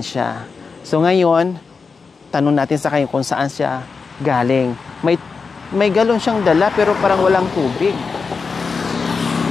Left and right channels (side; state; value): right; quieter; 4.9 dB